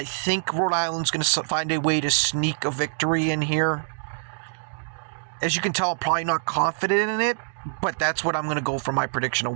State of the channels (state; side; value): silent; left; digital silence